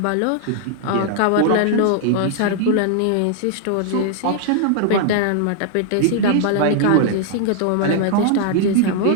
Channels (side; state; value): both; different; correlation -0.01